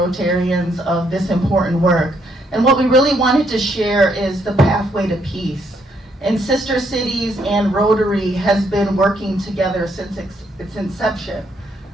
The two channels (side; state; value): both; normal; correlation 0.72